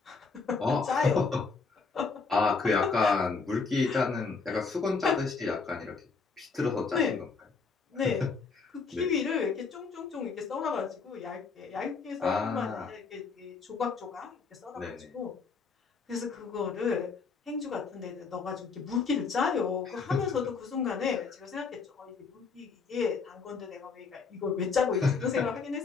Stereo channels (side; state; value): right; quieter; 4.8 dB